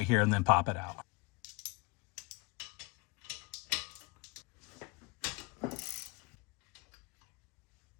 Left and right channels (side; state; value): right; quieter; 27.7 dB